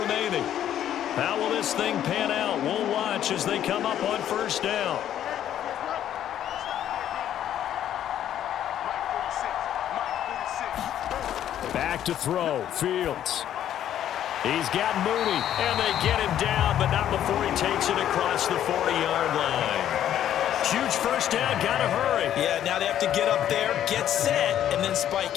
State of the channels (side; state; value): right; quieter; 10.9 dB